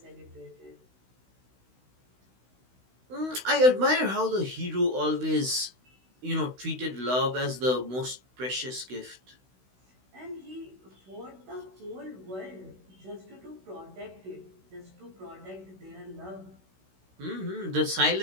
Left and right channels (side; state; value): left; late; 16 ms